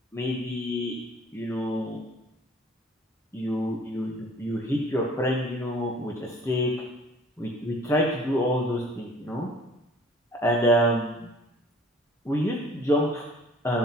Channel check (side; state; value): both; normal; correlation 0.51